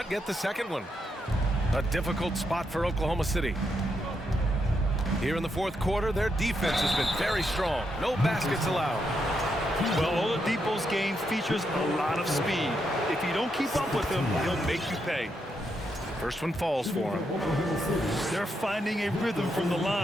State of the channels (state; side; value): normal; both; correlation 0.81